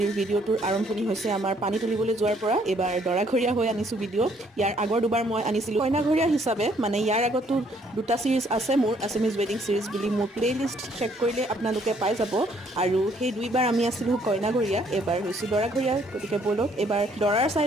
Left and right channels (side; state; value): both; normal; correlation 0.66